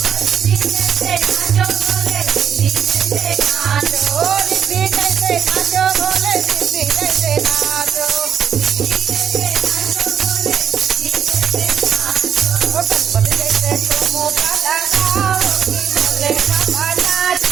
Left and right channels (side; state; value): left; quieter; 8.3 dB